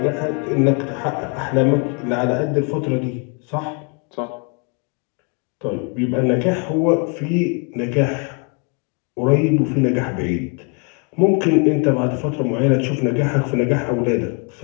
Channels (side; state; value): right; quieter; 35.5 dB